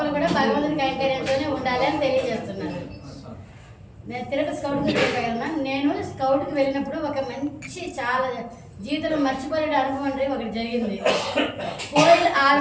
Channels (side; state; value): both; identical; correlation 1.00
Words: కూడా భగవంతుడి కైంకర్యంతోనే ఉండాలి అని తెలియజేస్తున్నారు. నేను తిరుపతి స్కౌట్కి వెళ్ళగలనా. నేను స్కౌట్కి వెళ్ళినప్పుడు ఒక మంచి చాలా జీవితంలో మర్చిపోయే అనుభవం అంటే ఒకటి జరిగింది. కోయిల్